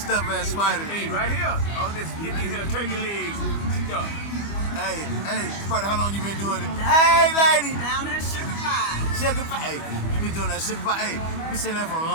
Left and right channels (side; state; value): right; late; 25 ms